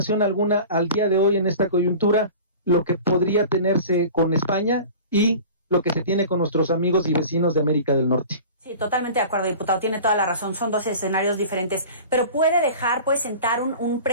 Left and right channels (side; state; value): both; inverted; correlation -0.39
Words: alguna al día de hoy en esta coyuntura lo que podría tenerse con España y lo que se tiene con nuestros amigos y vecinos de América del Norte. Sí, totalmente de acuerdo, diputado, tiene toda la razón, son dos escenarios diferentes, pero puede sentar un